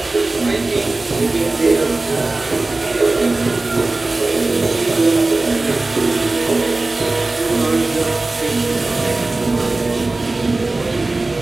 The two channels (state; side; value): quieter; left; 3.2 dB